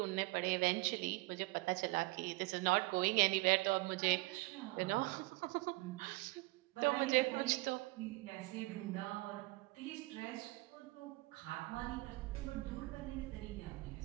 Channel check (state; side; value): quieter; left; 23.0 dB